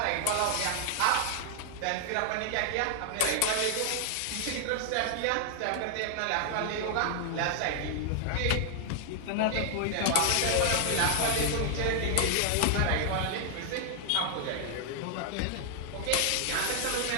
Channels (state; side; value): different; both; correlation 0.00